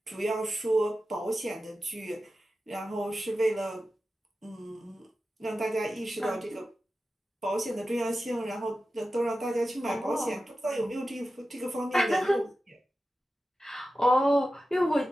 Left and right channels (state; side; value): normal; both; correlation 0.93